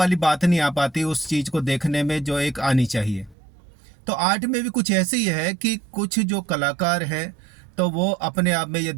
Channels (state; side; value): drops out; left; at 3.4 s